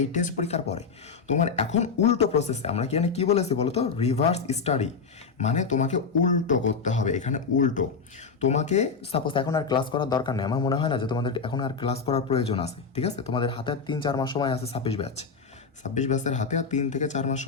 এই টেস্ট পরীক্ষার পরে। তোমার এখন উল্টো প্রসেসে আমরা কি বলেছি বলো তো? রিভার্স স্টাডি, মানে তোমাকে উল্টো করতে হবে। এখানে উল্টো তোমাকে সাপোজ এখন আর ক্লাস করার দরকার নেই, আমার মনে হয় না যে তোমাদের এখন আর ক্লাস করার প্রয়োজন আছে, ঠিক আছে। তোমাদের হাতে 3-4 মাস সময় আছে, 26 ব্যাচের হাতে আর 3 থেকে 4 মাস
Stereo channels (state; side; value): quieter; right; 5.2 dB